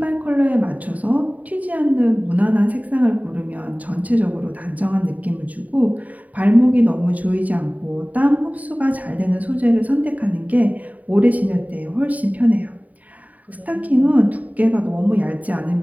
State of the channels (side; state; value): left; late; 0.073 ms